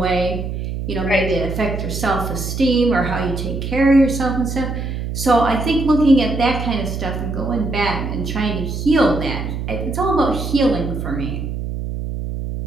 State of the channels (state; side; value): noise; right; hum, 5 dB below the sound